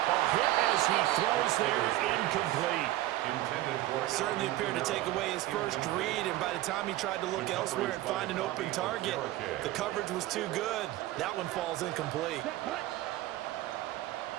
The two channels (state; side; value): quieter; left; 15.8 dB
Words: A hit as he throws there, incomplete. Certainly appeared to take away his first read, and by the time he tried to look elsewhere and find an open target, the coverage was too good. That one falls incomplete.